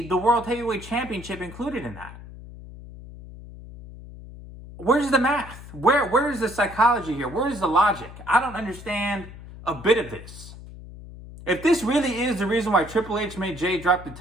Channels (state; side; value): noise; left; hum, 15 dB below the sound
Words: the World Heavyweight Championship included in that. Where's the math? Where is the psychology here? Where is the logic? I don't understand a bit of this. If this really is the reason why Triple H made Jey drop the